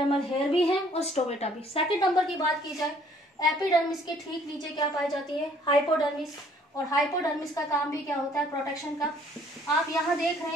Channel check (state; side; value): normal; both; correlation 0.60